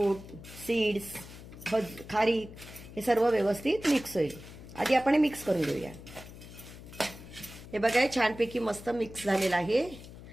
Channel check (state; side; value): noise; left; hum, 16 dB below the sound